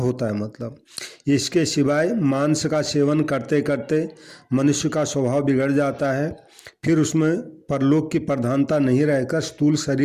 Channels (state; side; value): identical; both; correlation 1.00